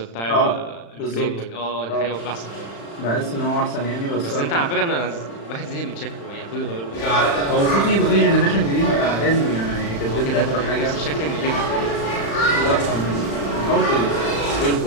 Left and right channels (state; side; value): late; right; 35 ms